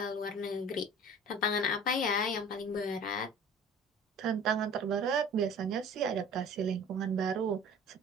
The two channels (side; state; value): both; normal; correlation 0.44